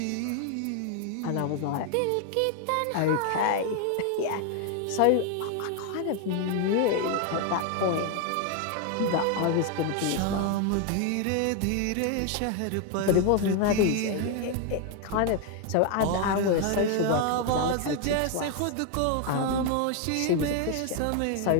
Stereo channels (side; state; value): both; different; correlation 0.01